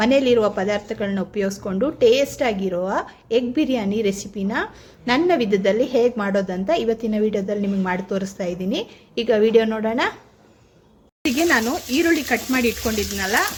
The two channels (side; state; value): both; identical; correlation 1.00